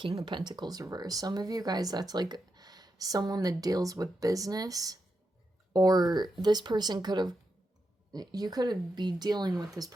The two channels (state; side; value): normal; both; correlation 0.86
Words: of Pentacles reverse. Some of you guys, that's like someone that deals with business, or this person could have, you could be dealing with this